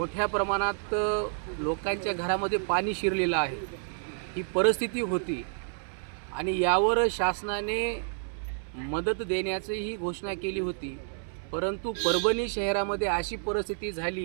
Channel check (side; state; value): left; silent; 58 dB below the other